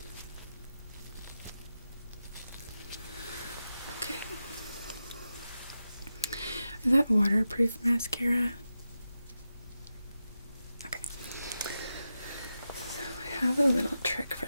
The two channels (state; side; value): inverted; both; correlation -0.90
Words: Okay. Is that waterproof mascara? Okay. So I have a little trick